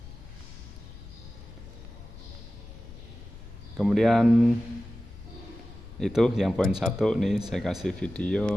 Kemudian itu yang poin 1 nih, saya kasih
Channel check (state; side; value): noise; left; rumble, 16 dB below the sound